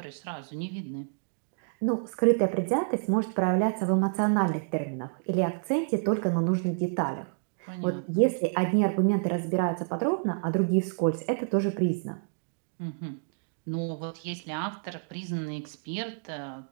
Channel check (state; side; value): silent; left; digital silence